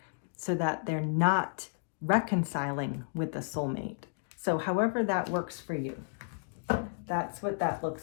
so that they're not reconciling with the soulmate. So however that works for you, that's what that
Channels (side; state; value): right; silent; digital silence